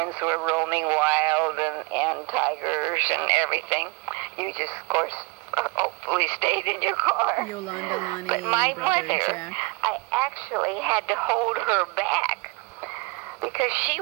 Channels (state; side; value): quieter; left; 27.1 dB